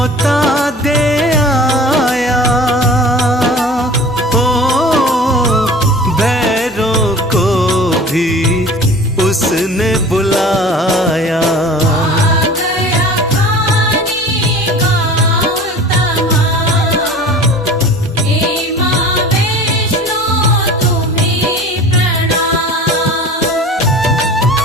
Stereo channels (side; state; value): both; normal; correlation 0.41